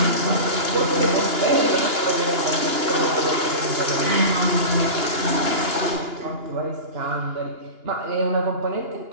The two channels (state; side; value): late; left; 2.9 ms